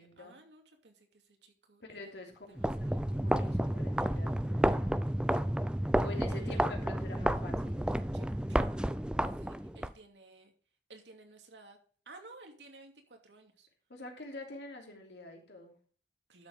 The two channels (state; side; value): normal; both; correlation 0.94